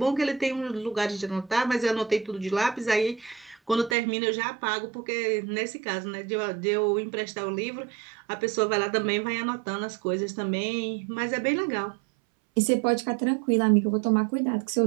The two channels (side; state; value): left; drops out; at 4.0 s